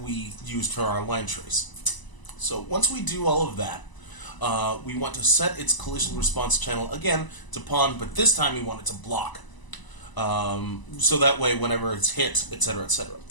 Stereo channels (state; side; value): late; right; 1.0 ms